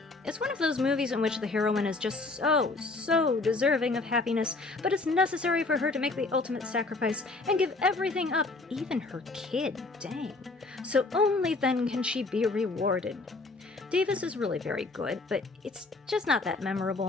It's one of those movies in which the heroine is just so deserving of happiness, but it's necessary for her to make the ultimate sacrifice and give everything up, even her kid, dang. So only then can she be rewarded. Davis is really very good, but it's just not that memorable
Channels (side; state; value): right; quieter; 3.4 dB